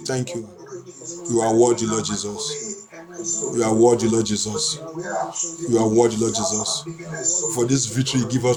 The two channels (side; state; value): both; identical; correlation 1.00